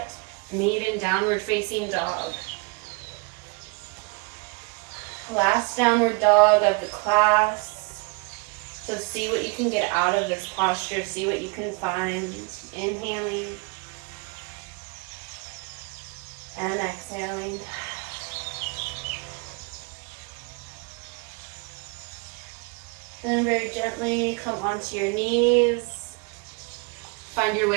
Meet in downward facing dog. Last downward dog of the class. So see what you can get out of this posture. See what you can find. Inhaling and exhaling. Then very gently come onto your knees. Find your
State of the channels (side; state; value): left; quieter; 29.5 dB